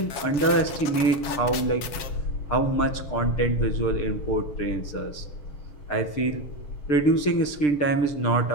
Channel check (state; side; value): late; right; 7.3 ms